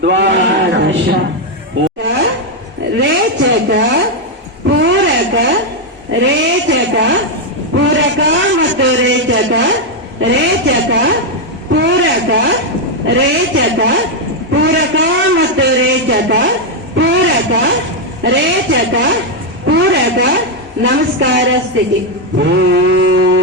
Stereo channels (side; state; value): both; normal; correlation 0.02